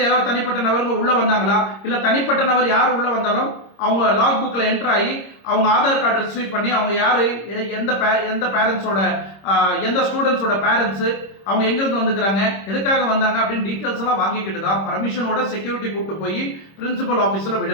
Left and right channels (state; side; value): late; right; 26 ms